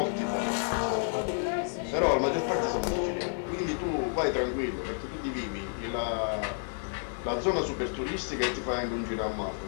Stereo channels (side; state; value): right; silent; digital silence